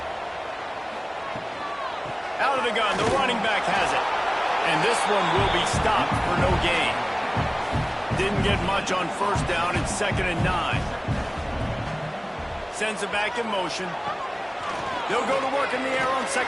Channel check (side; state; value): both; identical; correlation 1.00